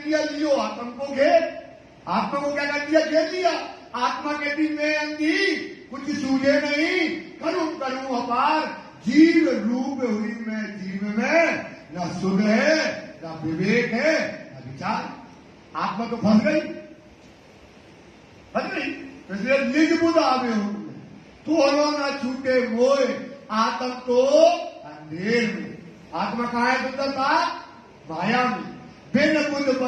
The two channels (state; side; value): identical; both; correlation 1.00